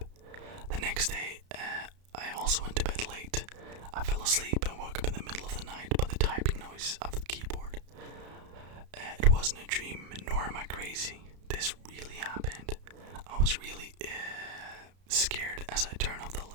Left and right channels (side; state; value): left; late; 32 ms